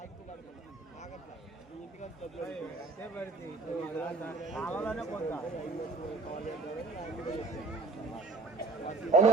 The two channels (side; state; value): left; quieter; 3.7 dB